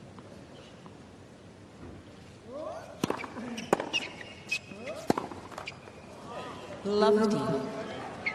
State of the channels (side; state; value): both; identical; correlation 1.00